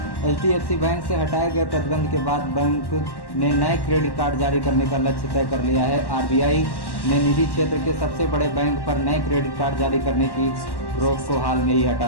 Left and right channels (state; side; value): late; right; 1.1 ms